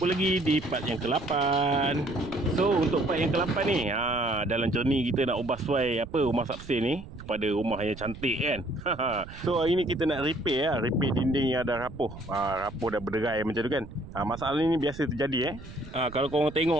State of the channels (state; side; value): noise; right; rumble, 15 dB below the sound